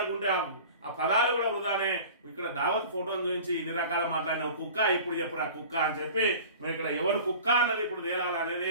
ఆ పదాలు కూడా వృధానే. ఇక్కడ దావత్ ఫోటోను చూపించి ఇన్ని రకాల మాట్లాడిన కుక్క ఇప్పుడు చెప్పురా కుక్క అని చెప్పి మరి ఇక్కడ ఎవరు కుక్క అన్నది ఇప్పుడు తేలాలి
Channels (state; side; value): inverted; both; correlation -0.41